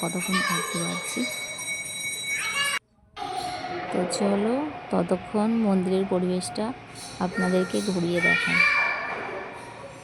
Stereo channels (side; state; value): both; identical; correlation 1.00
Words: কতক্ষণ থাকতে পারছি। তো চলো ততক্ষণ মন্দিরের পরিবেশটা আপনাদেরকে ঘুরিয়ে দেখাই।